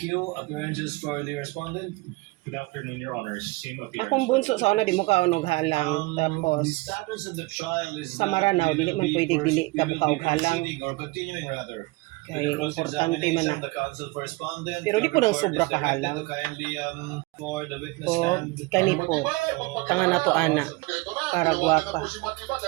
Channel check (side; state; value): left; quieter; 23.6 dB